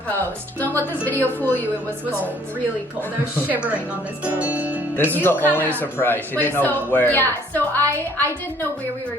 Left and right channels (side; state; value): both; normal; correlation 0.60